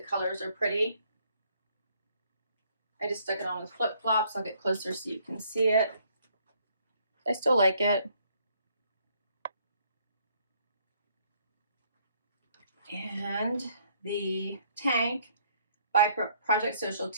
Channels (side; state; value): both; inverted; correlation -0.66